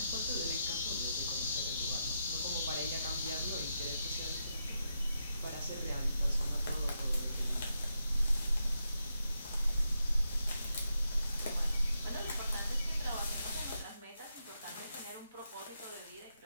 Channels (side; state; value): both; inverted; correlation -0.83